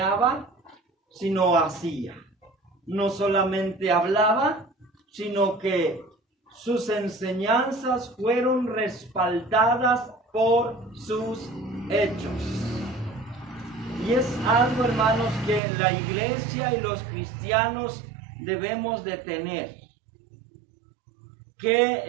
sino hacía. No solamente hablaba, sino que sus enseñanzas fueron respaldadas por sus hechos. Y es algo, hermanos, que la iglesia y los cristianos debemos de tener.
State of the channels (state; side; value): drops out; left; at 15.6 s